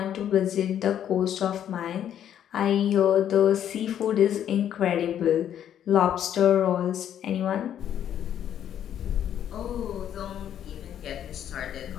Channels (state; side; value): quieter; right; 10.1 dB